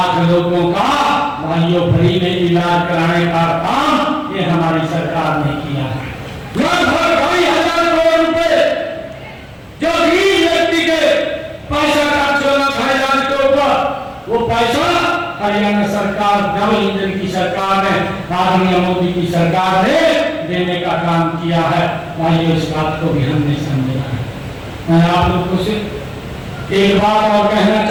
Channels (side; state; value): both; identical; correlation 1.00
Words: लोगों का भाइयों फ्री में इलाज कराने का काम ये हमारी सरकार ने किया है। लगभग 2,500 करोड़ रुपए जो गरीब व्यक्ति के पैसा खर्च होना था इलाज के ऊपर, वो पैसा हरियाणा सरकार, डबल इंजन की सरकार ने, आदरणीय मोदी की सरकार ने देने का काम किया है। भाइयों, इस बात को भी हमने समझा है। मैं आप लोगों से एक बात और कहना